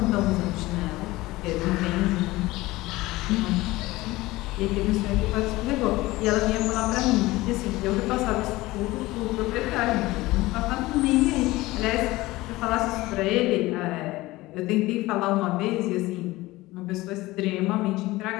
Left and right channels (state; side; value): quieter; right; 19.2 dB